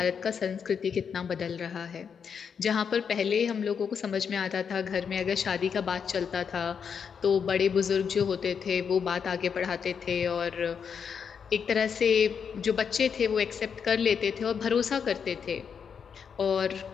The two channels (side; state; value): right; quieter; 6.8 dB